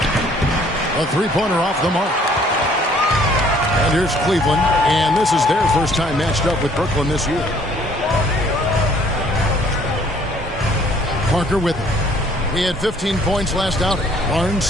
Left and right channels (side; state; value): both; normal; correlation 0.59